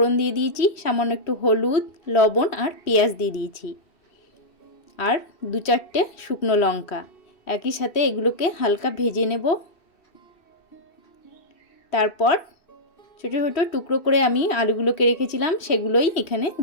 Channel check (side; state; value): right; late; 3.1 ms